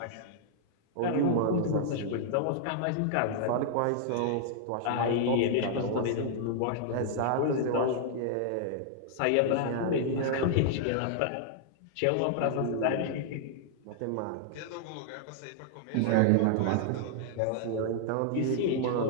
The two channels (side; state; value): both; different; correlation -0.01